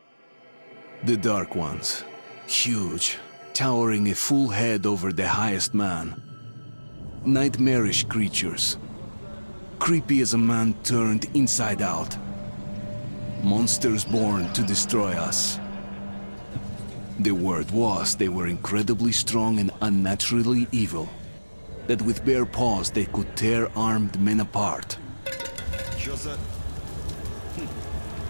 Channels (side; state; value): both; inverted; correlation -1.00